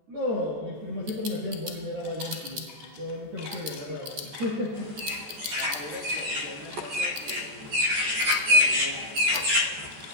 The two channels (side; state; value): left; late; 14 ms